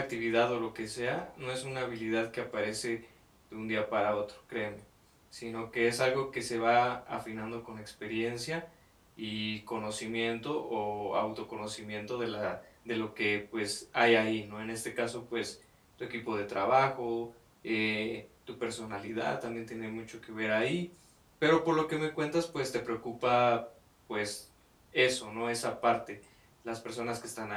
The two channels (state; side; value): identical; both; correlation 1.00